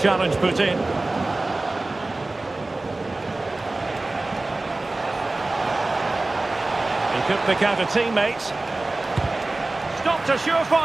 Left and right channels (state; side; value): quieter; left; 3.0 dB